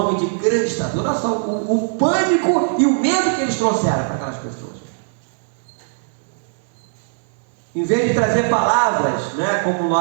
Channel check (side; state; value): left; silent; digital silence